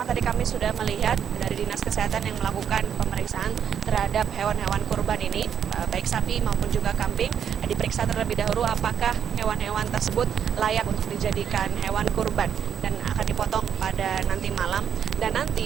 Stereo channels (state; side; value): quieter; left; 8.4 dB